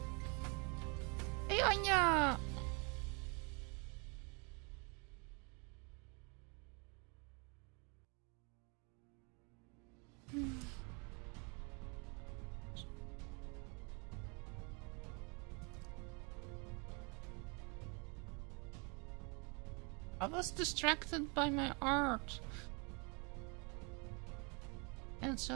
Hey, Anya. I was distracted by my art. And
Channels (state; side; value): quieter; left; 33.3 dB